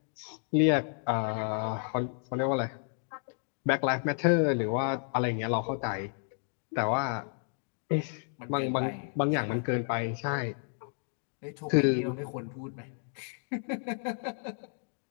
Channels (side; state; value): right; silent; 57 dB below the other